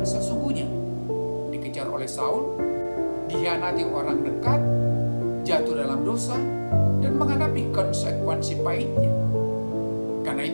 sesungguhnya, dikejar oleh Saul, dikhianati orang dekat, jatuh dalam dosa, dan menghadapi konsekuensi pahitnya. Karena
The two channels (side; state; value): both; inverted; correlation -1.00